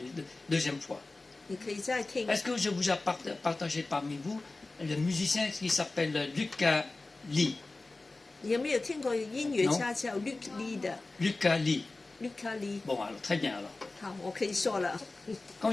deuxième fois. 你可以再听。 Est-ce que je vous ai partagé parmi vous le musicien qui s'appelle Lucas Lee? 你有没有听过音乐家叫 Luke Lee 的 Lucas Lee. Luke Lee？ Bon, alors très bien alors. 好，我可以说了。 Quand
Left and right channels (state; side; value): quieter; right; 3.3 dB